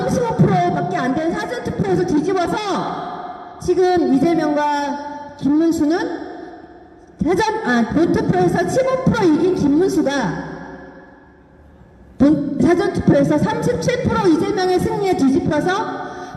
안 되는 사전투표에서 뒤집어서 지금 이재명과 김문수는 본투표에서 15% 이긴 김문수가 사전투표에서 37% 이재명의 승리에 뒤집혀서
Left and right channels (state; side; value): identical; both; correlation 1.00